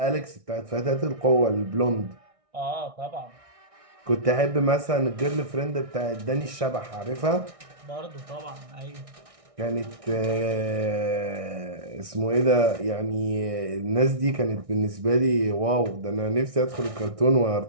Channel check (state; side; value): late; left; 1.6 ms